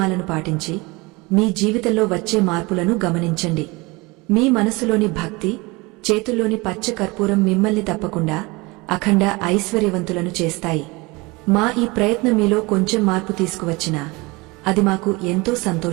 పాటించి మీ జీవితంలో వచ్చే మార్పులను గమనించండి. మీ మనసులోని భక్తి, చేతుల్లోని పచ్చ కర్పూరం మిమ్మల్ని తప్పకుండా అఖండ ఐశ్వర్యవంతులను చేస్తాయి. మా ఈ ప్రయత్నం మీలో కొంచెం మార్పు తీసుకువచ్చినా అది మాకు ఎంతో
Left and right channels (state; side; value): quieter; left; 24.6 dB